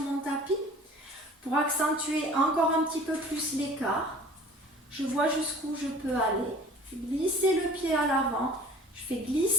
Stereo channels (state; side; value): normal; both; correlation 0.46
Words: tapis, pour accentuer encore un petit peu plus l'écart. Je vois jusqu'où je peux aller. Je fais glisser le pied à l'avant, je fais